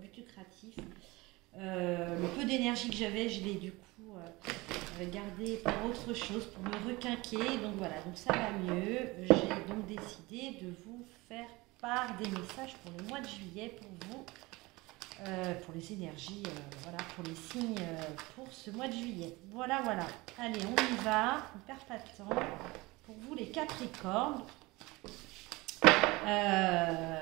lucratif. Le peu d'énergie que j'avais, je l'ai du coup gardé pour autre chose, pour me requinquer. Donc voilà, donc ça va mieux. J'ai donc décidé de vous faire part des messages pour le mois de juillet, pour vous, pour les énergies, voilà, pour les signes pour ce mois de juillet. Voilà, voilà. Allez, on y va, on ne perd pas de temps. Pour vous les Capricornes,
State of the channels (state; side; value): quieter; left; 22.3 dB